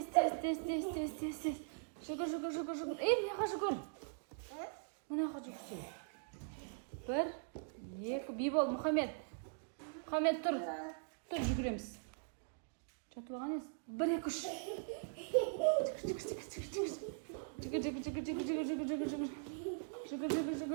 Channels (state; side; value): silent; left; digital silence